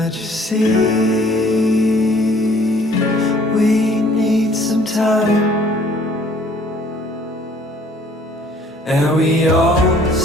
you see? We need some time. And we all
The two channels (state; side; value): normal; both; correlation 0.57